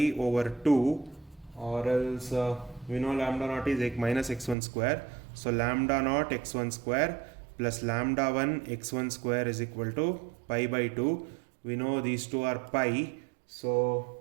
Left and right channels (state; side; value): drops out; left; at 4.5 s